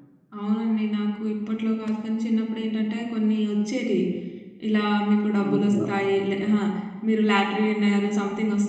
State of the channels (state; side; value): identical; both; correlation 1.00